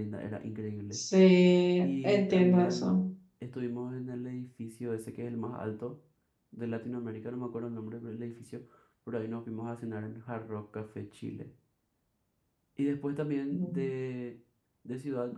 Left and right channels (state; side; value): identical; both; correlation 1.00